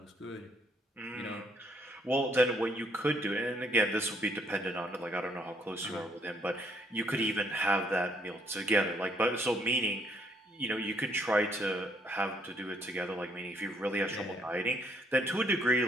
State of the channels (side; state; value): both; normal; correlation 0.68